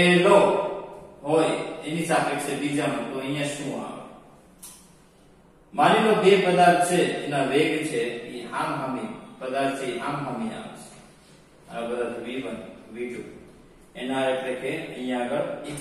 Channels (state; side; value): identical; both; correlation 1.00